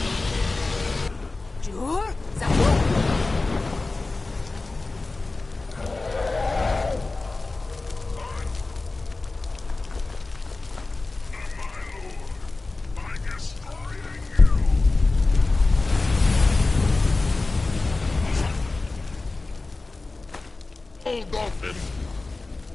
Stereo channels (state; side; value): quieter; right; 3.4 dB